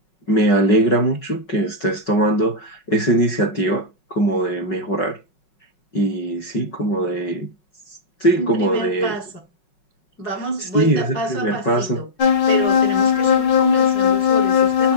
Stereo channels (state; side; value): late; right; 5.4 ms